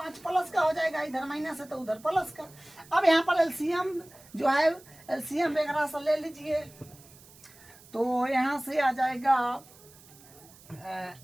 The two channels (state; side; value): noise; right; hiss, 23 dB below the sound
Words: प्लस का हो जाएगा, इधर माइनस है तो उधर प्लस का। अब यहाँ पर एलसीएम जो है एलसीएम वगैरह से ले लीजिए, तो यहाँ से आ जाएगा